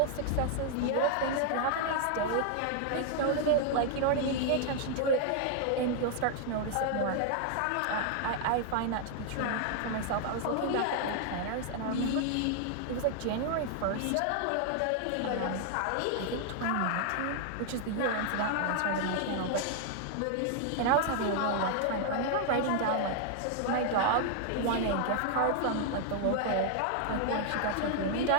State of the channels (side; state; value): both; different; correlation 0.00